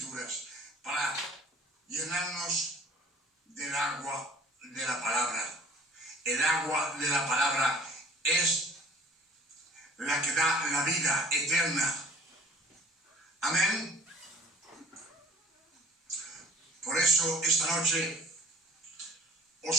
para llenarnos del agua de la palabra. El agua de la palabra es la que da la vida eterna. Amén. Por eso esta noche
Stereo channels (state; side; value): normal; both; correlation 0.49